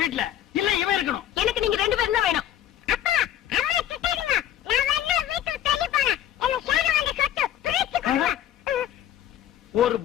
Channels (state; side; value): quieter; right; 11.4 dB